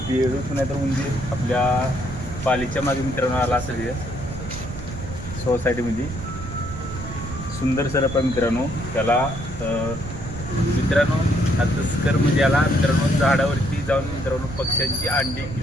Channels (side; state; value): right; noise; rumble, 10 dB below the sound